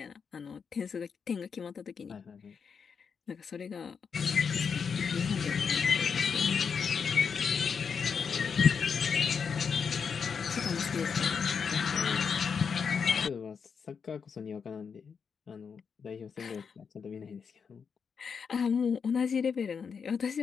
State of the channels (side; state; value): right; quieter; 6.2 dB